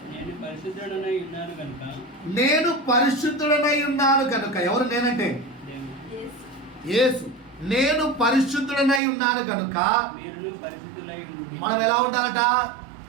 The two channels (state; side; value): drops out; left; at 9.0 s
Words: నేను పరిశుద్ధుడనై ఉన్నాను కనుక నేను పరిశుద్ధుడనై ఉన్నాను కనుక. ఎవరు నేనంటే? యేసు. నేను పరిశుద్ధుడనై ఉన్నాను కనుక మీరును పరిశుద్ధులై ఉండుడి. మనం ఎలా ఉండాలట?